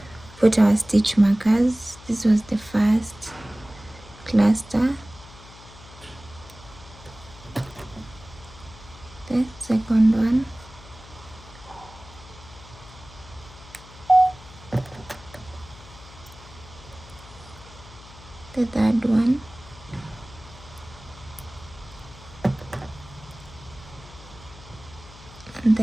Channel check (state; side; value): noise; left; hum, 20 dB below the sound